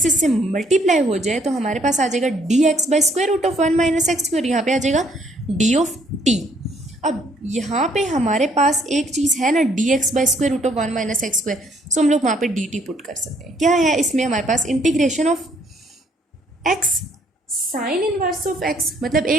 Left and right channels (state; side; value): normal; both; correlation 0.66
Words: इससे मल्टीप्लाई हो जाए तो हमारे पास आ जाएगा d x by square root of 1 minus x square, यहाँ पे आ जाएगा डी ऑफ टी। अब यहाँ पे हमारे पास एक चीज़ है ना, d x by square root of 1 minus x square, so हम लोग वहाँ पे डी टी पुट कर सकते हैं। क्या है इसमें हमारे पास, integration of x sine inverse of x, मतलब